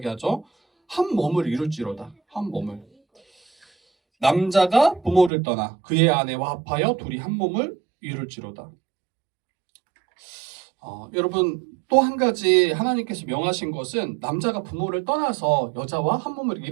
한 몸을 이룰지로다. 한 몸을. 남자가 부모를 떠나 그의 아내와 합하여 둘이 한 몸을 이룰지로다. 여러분 또 한 가지 하나님께서 명하신 것은 남자가 부모를 떠나서 여자와 한 몸을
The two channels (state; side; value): drops out; left; at 5.3 s